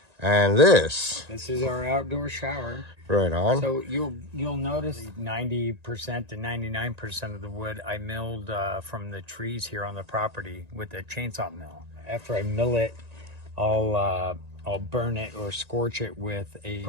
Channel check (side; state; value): left; late; 1.9 ms